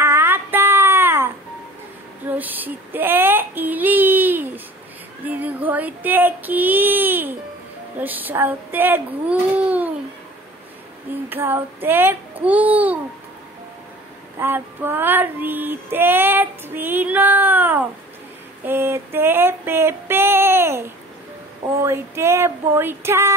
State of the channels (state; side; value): normal; both; correlation 0.44